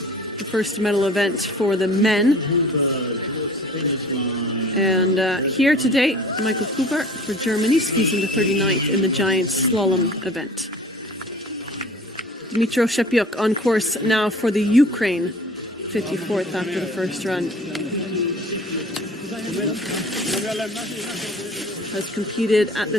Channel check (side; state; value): both; normal; correlation 0.46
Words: the first medal event for the men. And here today, Michael Huber for Germany skis into 39th in the giant slalom event. Dmytro Shepiuk on course now for the Ukraine, 54th after the first run. Has competed at